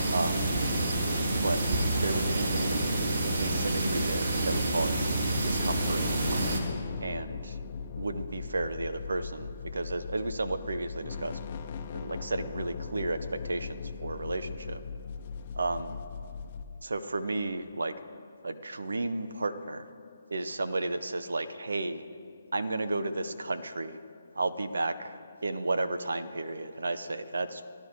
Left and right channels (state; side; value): inverted; both; correlation -0.83